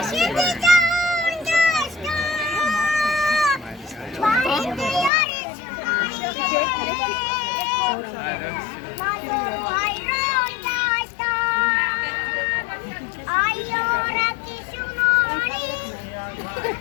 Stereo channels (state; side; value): drops out; right; at 5.1 s